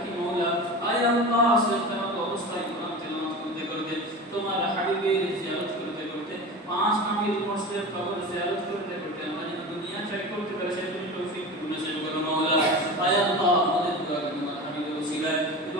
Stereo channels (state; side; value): normal; both; correlation 0.30